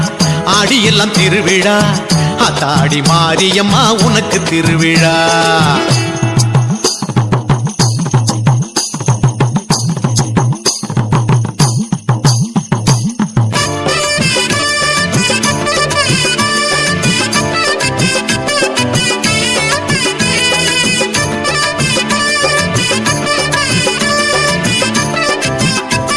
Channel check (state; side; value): identical; both; correlation 1.00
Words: ஆடியெல்லாம் திருவிழா ஆத்தாடி மாரியம்மா உனக்கு திருவிழா